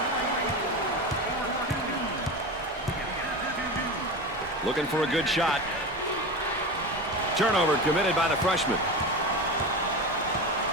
Looking for a good shot. Turnover committed by the freshman.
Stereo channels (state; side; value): normal; both; correlation 0.25